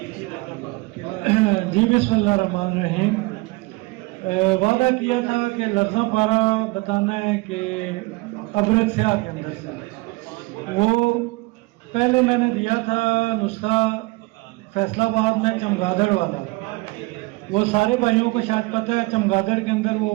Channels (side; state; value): left; quieter; 24.2 dB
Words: جی بسم اللہ الرحمن الرحیم. وعدہ کیا تھا کہ لفظہ پارا بتانا ہے کہ ابرک سیاہ کے اندر سے وہ پہلے میں نے دیا تھا نسخہ فیصلہ آباد میں چمگادڑ والا. وہ سارے بھائیوں کو شاید پتہ ہے چمگادڑ کے اندر